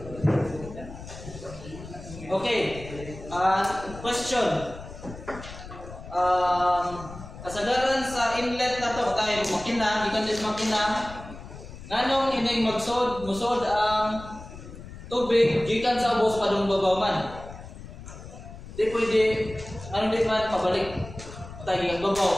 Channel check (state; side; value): noise; left; rumble, 14 dB below the sound